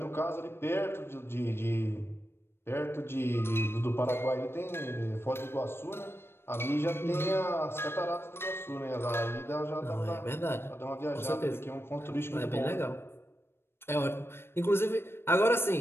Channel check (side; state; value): right; late; 0.12 ms